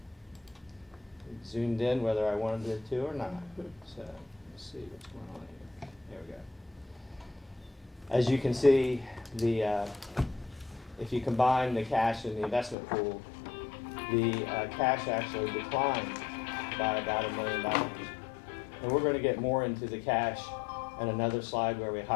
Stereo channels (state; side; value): drops out; right; at 12.8 s